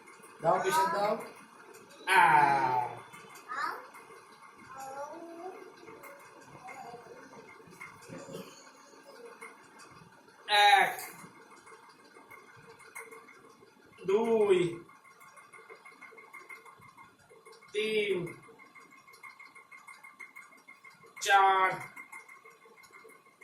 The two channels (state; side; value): identical; both; correlation 1.00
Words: দাও প্রেশার দাও। এক, দুই, তিন, চার,